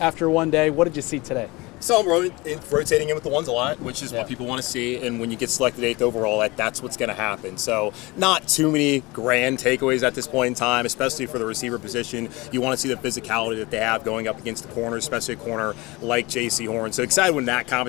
one day. What did you see today? So I'm rotating in with the ones a lot, which is what people want to see. And when you get selected 8th overall, that's what's going to happen. So not too many grand takeaways at this point in time, especially for the receiver position. You want to see the physicality that they have going up against the corner, especially a corner like J.C. Horn. So excited when that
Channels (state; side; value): quieter; right; 23.2 dB